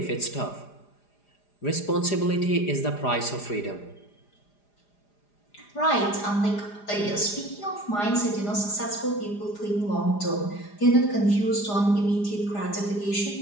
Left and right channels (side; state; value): right; late; 4.9 ms